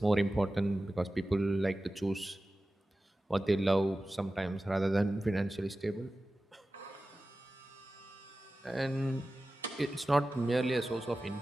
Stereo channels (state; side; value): normal; both; correlation 0.95